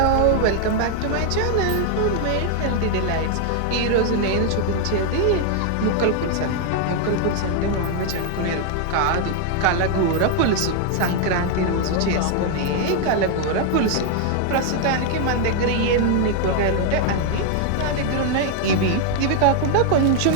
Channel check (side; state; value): both; different; correlation 0.00